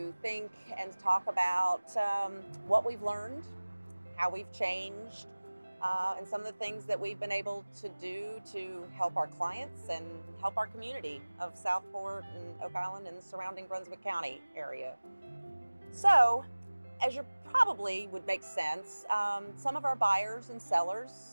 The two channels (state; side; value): inverted; both; correlation -1.00